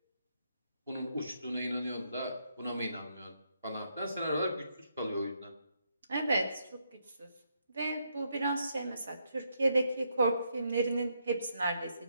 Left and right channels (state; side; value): inverted; both; correlation -0.77